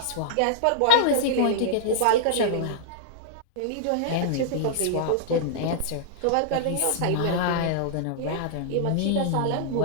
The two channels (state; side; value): different; both; correlation -0.01